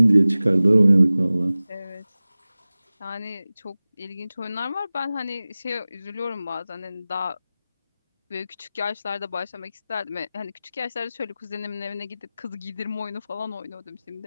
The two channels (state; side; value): inverted; both; correlation -0.97